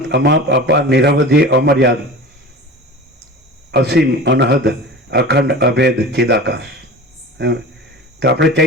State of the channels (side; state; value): both; normal; correlation 0.35